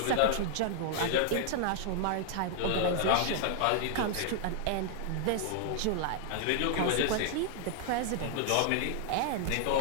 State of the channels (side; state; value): both; different; correlation -0.01